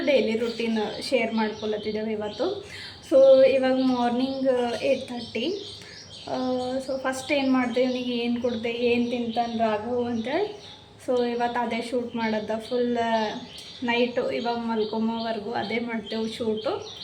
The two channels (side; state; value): both; identical; correlation 1.00